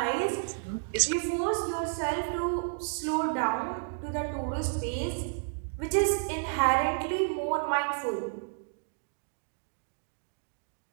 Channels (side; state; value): left; silent; digital silence